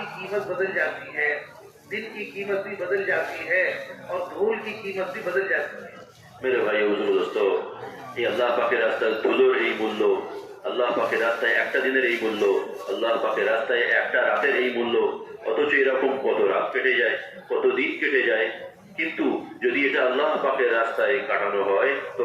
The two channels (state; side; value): identical; both; correlation 1.00